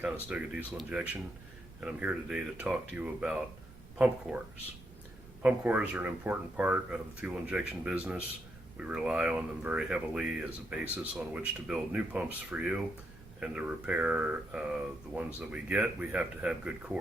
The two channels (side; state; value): right; noise; rumble, 19 dB below the sound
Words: Conestoga Diesel Injection, and I'm here today to talk to you about pump cores. Pump cores are an important part of the fuel injection business. We rely on them very heavily as a basis on which to build new pumps for you, and to repair the ones that we get, we have to have good